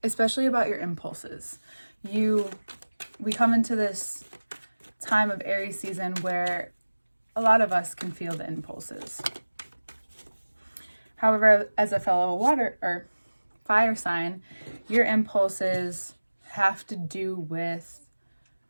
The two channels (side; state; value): both; inverted; correlation -1.00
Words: especially about your impulses. We come into this time of Aries season where a lot of us can feel the impulses. However, as a fellow water or fire sign, your impulses have to do with